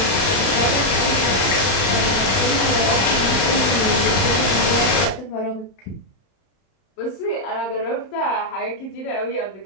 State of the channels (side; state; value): right; late; 31 ms